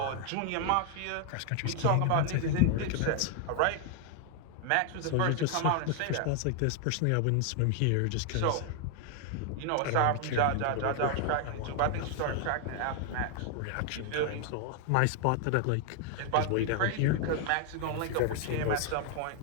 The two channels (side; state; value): both; different; correlation 0.00